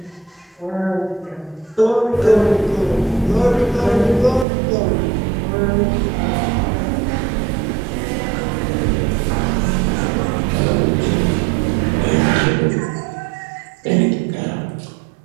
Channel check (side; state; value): left; drops out; at 4.5 s